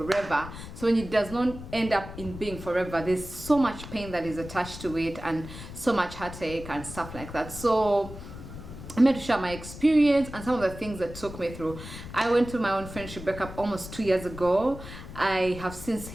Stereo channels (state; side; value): noise; left; rumble, 12 dB below the sound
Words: So when it does not end up in being forever, there's so much pain that is attached to it and so much heartache and stuff like that. So I'm here to share my experience and some of the things that took me through. I went through my own friendship breakup almost 2 years ago. I have since